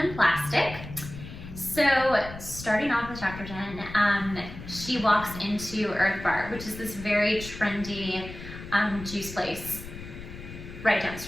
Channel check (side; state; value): left; noise; rumble, 12 dB below the sound